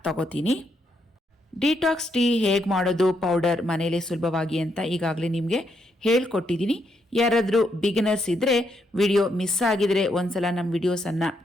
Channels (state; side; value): normal; both; correlation 0.77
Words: ತಗೋತೀನಿ. ಡಿಟಾಕ್ಸ್ ಟೀ ಹೇಗೆ ಮಾಡೋದು ಪೌಡರ್ ಮನೇಲಿ ಸುಲಭವಾಗಿ ಅಂತ ಈಗಾಗಲೇ ನಿಮಗೆ ಹೇಳ್ಕೊಟ್ಟಿದ್ದೀನಿ. ಯಾರಾದರೂ ಬಿಗಿನರ್ಸ್ ಇದ್ದರೆ ವಿಡಿಯೋ ಮಿಸ್ ಆಗಿದರೆ ಒಂದ್ಸಲ ನಮ್ಮ ವಿಡಿಯೋಸನ್ನು